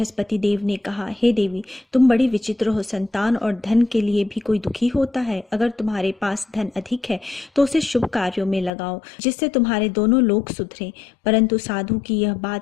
देव ने कहा, हे देवी, तुम बड़ी विचित्र हो। संतान और धन के लिए भी कोई दुखी होता है। अगर तुम्हारे पास धन अधिक है तो उसे शुभ कार्यों में लगाओ जिससे तुम्हारे दोनों लोग सुधरे। परंतु साधु की यह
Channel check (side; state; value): right; drops out; at 8.7 s